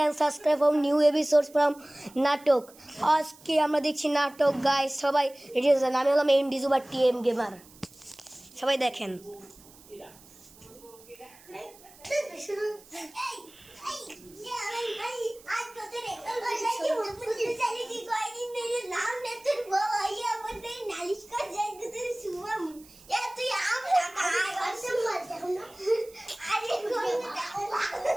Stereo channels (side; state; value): right; noise; hiss, 23 dB below the sound